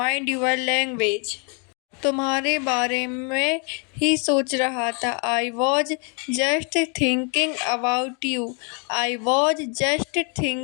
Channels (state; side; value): quieter; right; 37.4 dB